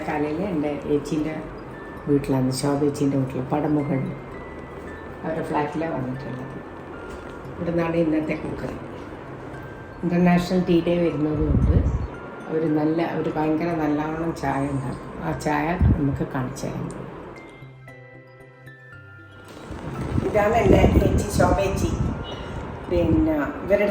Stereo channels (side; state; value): both; identical; correlation 1.00